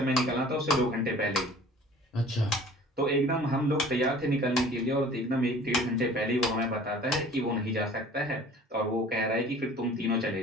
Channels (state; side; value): normal; both; correlation 0.47